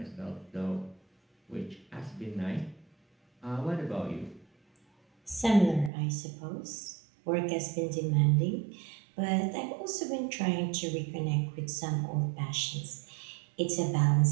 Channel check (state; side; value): drops out; left; at 5.9 s